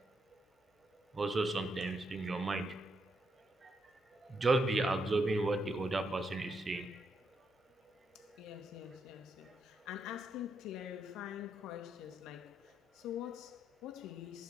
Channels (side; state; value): both; normal; correlation 0.80